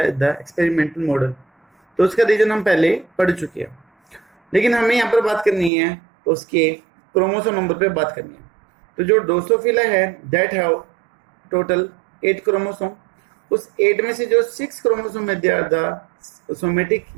the experimental model. तो उसका रीजन हम पहले पढ़ चुके हैं, लेकिन हमें यहाँ पर बात करनी है उसके क्रोमोसोम नंबर पे बात करनी है। तो जो ड्रोसोफिला है दैट हैव टोटल 8 क्रोमोसोम। उस 8 में से जो 6 क्रोमोसोम है दे आर द सोमेटिक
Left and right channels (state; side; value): drops out; left; at 5.7 s